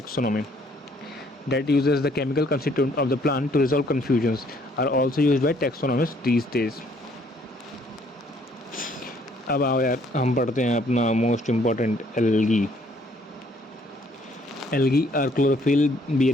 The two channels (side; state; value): both; normal; correlation 0.64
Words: that uses the chemical constituent of the plant to resolve confusions are also used by taxonomists these days. अब आओ यार हम पढ़ते हैं अपना most important algae. Algae are chlorophyll